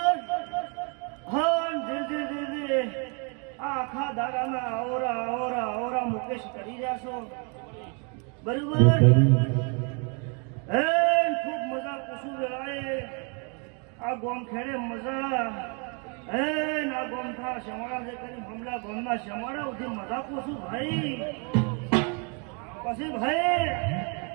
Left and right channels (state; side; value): quieter; left; 35.9 dB